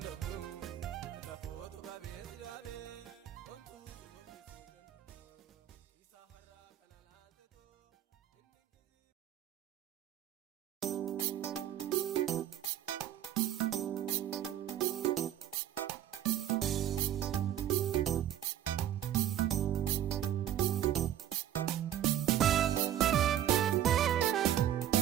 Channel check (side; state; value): left; quieter; 11.3 dB